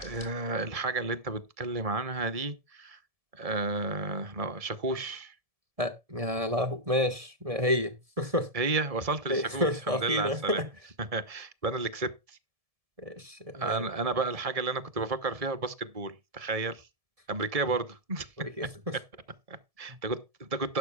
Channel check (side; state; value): left; late; 1.7 ms